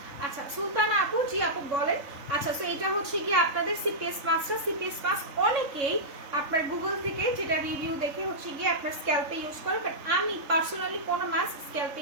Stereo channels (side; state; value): left; late; 3.6 ms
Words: আচ্ছা সুলতানা আপু, জি আপু বলেন। আচ্ছা, তো এটা হচ্ছে কি আপনাদের সিপিএস মাস্কটা। সিপিএস মাস্ক অনেকেই আপনার গুগল থেকে যেটা রিভিউ দেখে হচ্ছে গিয়ে আপনার স্ক্যাল্পে ইউজ করে, বাট আমি পার্সোনালি কোনো মাস্ক স্ক্যাল্পে